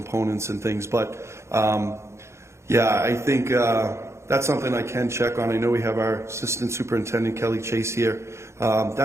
and things. But yeah, I think that's something I can check on. I know we have our Assistant Superintendent, Kelly Chase, here.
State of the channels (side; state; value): left; late; 0.13 ms